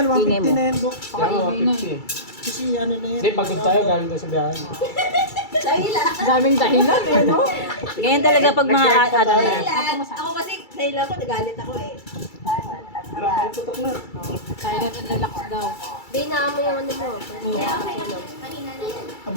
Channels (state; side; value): late; right; 2.3 ms